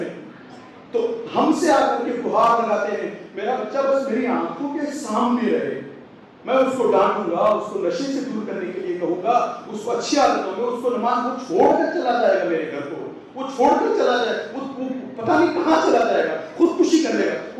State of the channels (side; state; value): both; identical; correlation 1.00